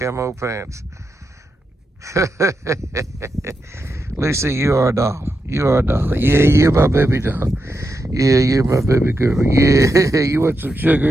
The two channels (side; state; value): both; normal; correlation 0.86